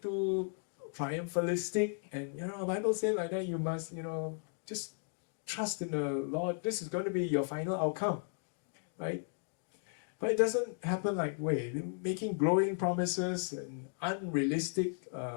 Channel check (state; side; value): silent; right; 54 dB below the other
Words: triumphalistic, and the Bible says like that, you must, just trust in the Lord. This is going to be your final outcome, right? But it doesn't happen like way. They're making glowing promises and unrealistic